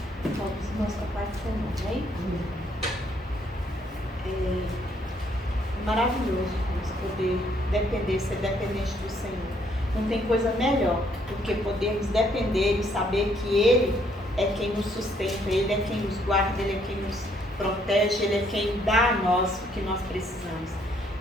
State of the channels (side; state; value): both; normal; correlation 0.68